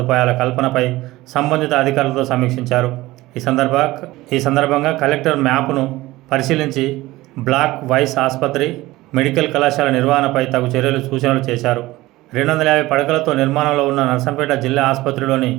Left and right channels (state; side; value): quieter; left; 18.4 dB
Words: కల్పనపై సంబంధిత అధికారులతో సమీక్షించారు. ఈ సందర్భంగా కలెక్టర్ మ్యాప్ను పరిశీలించి బ్లాక్ వైస్ ఆసుపత్రి, మెడికల్ కళాశాల నిర్వహణపై తగు చర్యలు సూచనలు చేశారు. 250 పడకలతో నిర్మాణంలో ఉన్న నర్సంపేట జిల్లా ఆసుపత్రిలోని